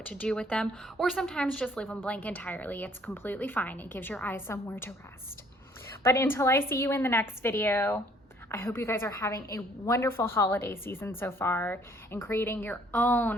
to do with them, or sometimes just leave them blank entirely. It's completely fine. It gives your eyes somewhere to rest. But until I see you in the next video, I hope you guys are having a wonderful holiday season so far and creating your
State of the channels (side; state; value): both; normal; correlation 0.60